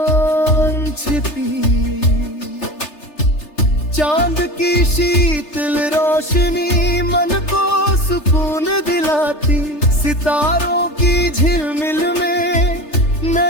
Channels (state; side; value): late; right; 3.3 ms